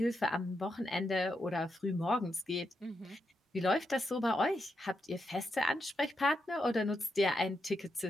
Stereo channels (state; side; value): normal; both; correlation 0.84